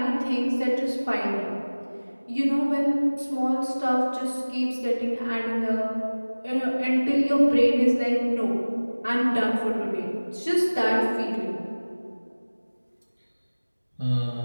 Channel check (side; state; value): both; inverted; correlation -1.00